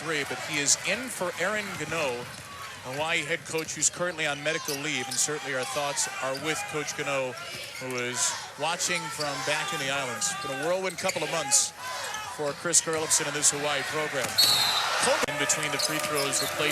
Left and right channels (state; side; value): identical; both; correlation 1.00